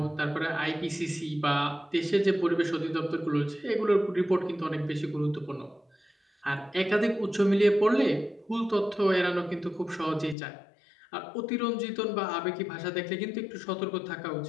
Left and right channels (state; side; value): drops out; right; at 10.4 s